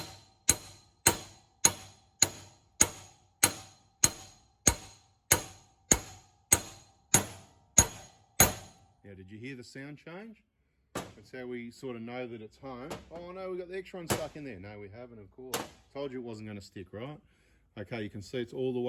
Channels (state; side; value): identical; both; correlation 1.00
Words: Now, did you hear the sound change? That's how we sort of know that it's home. Oh no, we got the extra one stuck in there. No, we haven't, of course. Told you it wasn't going to stick, right? Okay, you can see it's all the